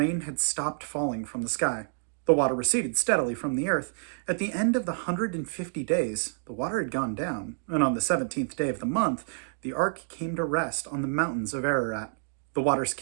had stopped falling from the sky. The water receded steadily from the earth. At the end of the 150 days, the water had gone down, and on the 17th day of the month, the ark came to rest on the mountains of Ararat. The waters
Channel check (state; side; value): silent; left; digital silence